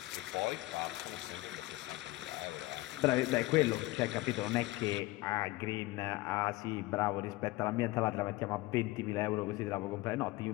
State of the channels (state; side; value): quieter; right; 19.8 dB